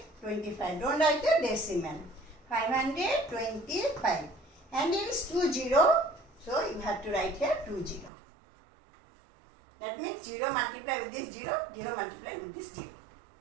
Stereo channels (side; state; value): left; drops out; at 8.1 s